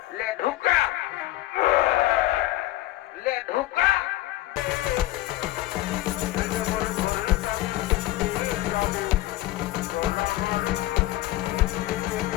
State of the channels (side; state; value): right; quieter; 16.5 dB